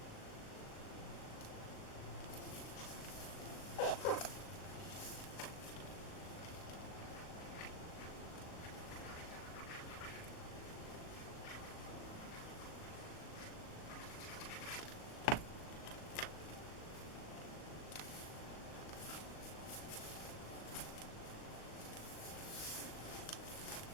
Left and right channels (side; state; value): right; late; 38 ms